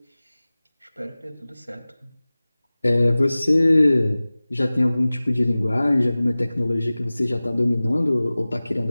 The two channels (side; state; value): both; inverted; correlation -0.98